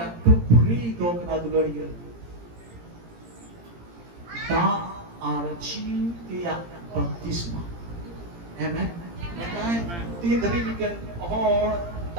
टुकड़ी दो कना दुलड़िया दा आरचिया बपतिस्मा आमेन मैं तीन दरी मिकन और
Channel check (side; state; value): left; late; 17 ms